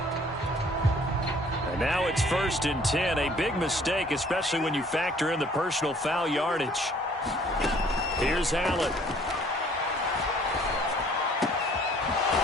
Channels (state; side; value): normal; both; correlation 0.57